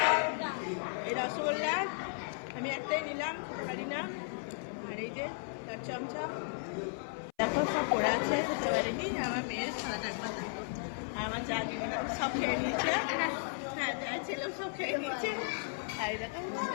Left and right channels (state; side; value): silent; right; 54 dB below the other